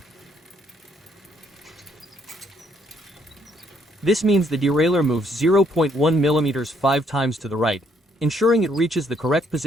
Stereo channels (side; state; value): both; normal; correlation 0.69